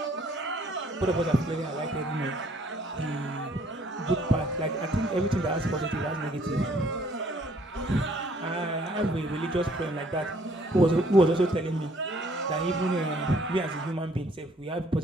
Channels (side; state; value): both; normal; correlation 0.62